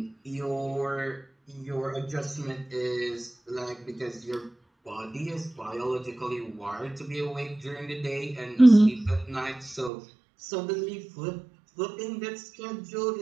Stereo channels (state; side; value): drops out; left; at 9.9 s